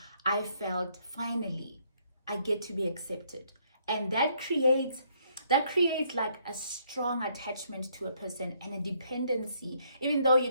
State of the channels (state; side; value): inverted; both; correlation -0.69